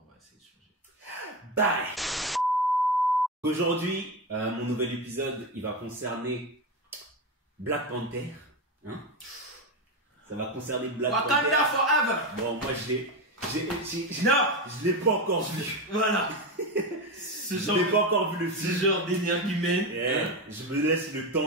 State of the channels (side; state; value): both; normal; correlation 0.16